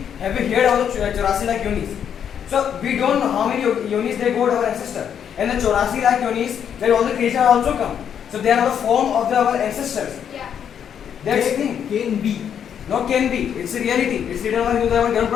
Have you heard of the 84 lakh yonis? So we don't know how many yonis they got our ancestors. And the 84 lakh yonis where all the creatures also come. So they are the form of our ancestors. Yeah. That's the thing. Can be. Not can be. It's a reality. It's written on Hindu Dharma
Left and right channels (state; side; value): quieter; right; 8.5 dB